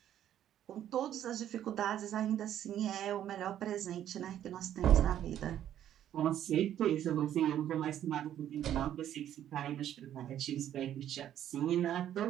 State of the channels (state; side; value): quieter; left; 11.0 dB